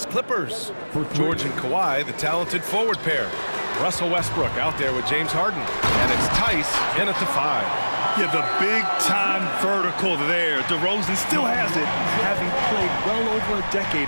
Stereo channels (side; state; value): both; inverted; correlation -1.00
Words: Clippers. George and Kawhi, the talented forward pair. Russell Westbrook out there with James Harden. And it's Tice in at the 5. Yeah, the big-time vertical there. DeRozan still has it, having played well over a decade